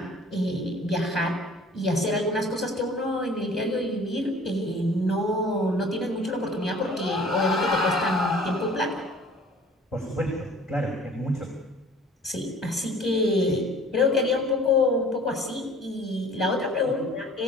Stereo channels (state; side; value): normal; both; correlation 0.49